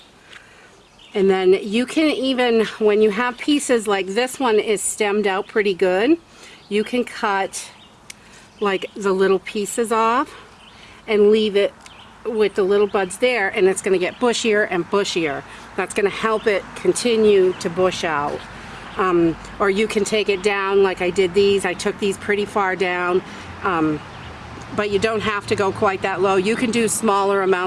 And then you can even, when you have pieces like this one is stemmed out pretty good, you can cut like the little pieces off and leave it with the little buds there, and it's going to get bushier and bushier. That's going to help it continue to bush out. Or you can take it down like I did these. I took these pretty far down, but you don't have to go quite that low. You can do smaller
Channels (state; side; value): identical; both; correlation 1.00